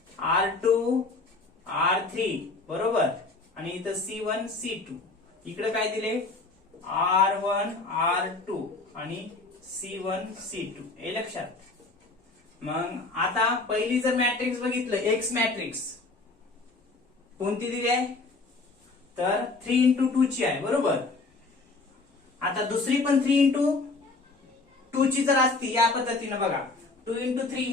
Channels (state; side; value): quieter; right; 3.6 dB